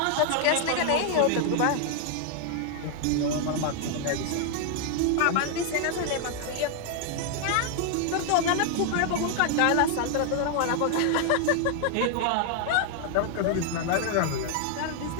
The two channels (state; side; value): different; both; correlation 0.00